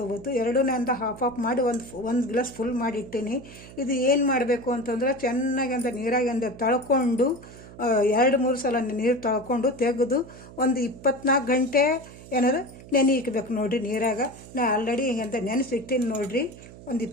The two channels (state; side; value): noise; right; hum, 17 dB below the sound